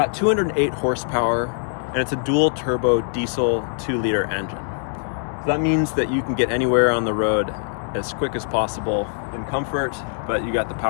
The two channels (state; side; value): silent; right; 64 dB below the other